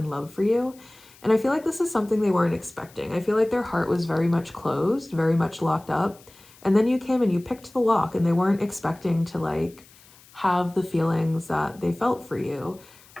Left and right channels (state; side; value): noise; left; hiss, 25 dB below the sound